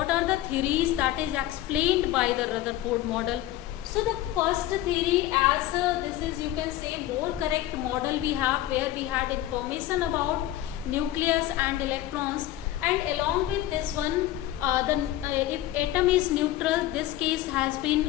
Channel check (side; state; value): right; quieter; 14.3 dB